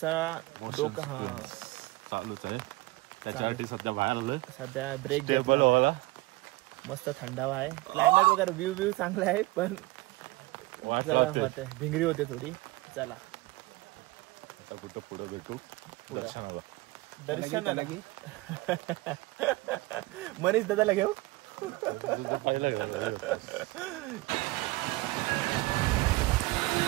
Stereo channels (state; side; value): quieter; left; 21.3 dB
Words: डोकं हा चालूच आहे. त्याच्यासाठी सध्या बाहेर आलोय. सध्या ब्रेक टेबल व्हायला मस्त थंडावा आहे. क्लायमेट वगैरे व्ह्यू चांगला आहे पण होते भिंगरी होते थोडी. चला आता कुठं पुढे भेटू दर्शनाला मनीष दादाला घेऊ.